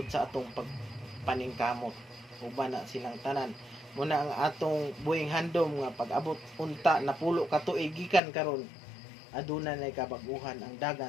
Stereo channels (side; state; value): right; drops out; at 8.2 s